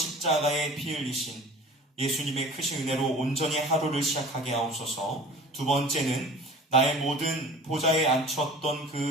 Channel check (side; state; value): both; normal; correlation 0.42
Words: 피 흘리신 예수님의 크신 은혜로 온전히 하루를 시작하게 하옵소서. 두 번째는 나의 모든 보좌에 앉혔던